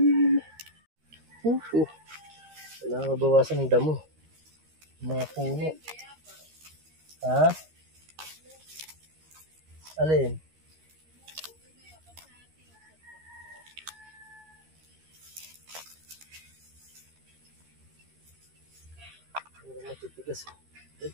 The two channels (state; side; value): late; left; 13 ms